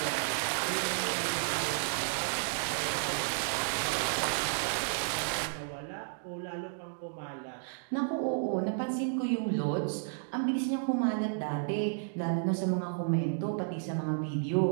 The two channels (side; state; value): left; silent; digital silence